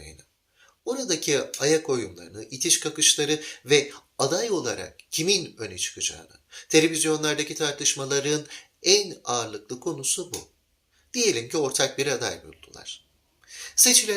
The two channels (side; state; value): both; identical; correlation 1.00